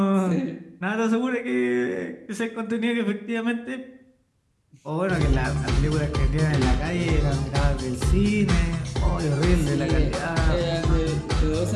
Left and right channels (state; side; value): identical; both; correlation 1.00